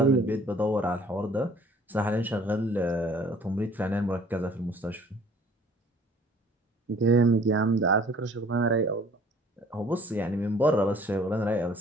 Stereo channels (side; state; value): both; normal; correlation 0.54